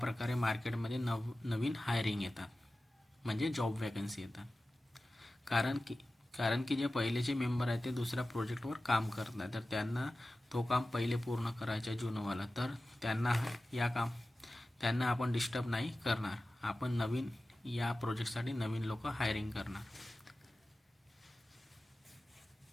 मार्केटमध्ये नवीन हायरिंग येतात म्हणजे जॉब वॅकन्सी येतात. कारण की जे पहिलेचे मेंबर आहेत ते दुसऱ्या प्रोजेक्टवर काम करत नाही, तर त्यांना तो काम पहिले पूर्ण करायचं आहे जुनवाला. तर त्यांना आपण डिस्टर्ब नाही करणार. आपण नवीन या प्रोजेक्टसाठी नवीन लोक हायरिंग करणार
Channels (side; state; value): both; normal; correlation 0.95